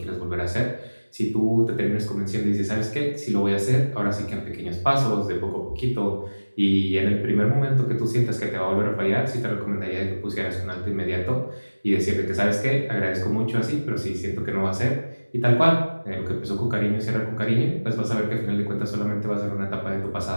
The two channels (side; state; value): both; inverted; correlation -1.00